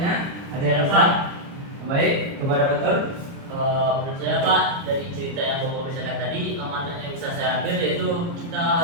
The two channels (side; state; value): left; late; 29 ms